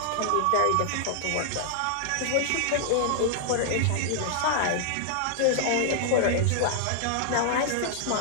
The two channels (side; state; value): both; different; correlation -0.01